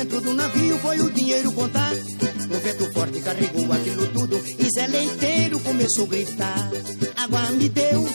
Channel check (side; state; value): both; inverted; correlation -1.00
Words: do navio foi o dinheiro contar. O vento forte carregou aquilo tudo, e Zé Leiteiro começou a gritar: água me deu,